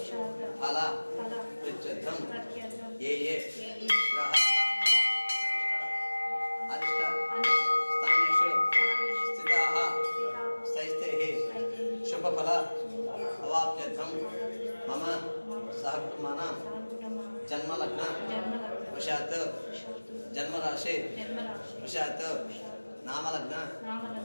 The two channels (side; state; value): both; inverted; correlation -1.00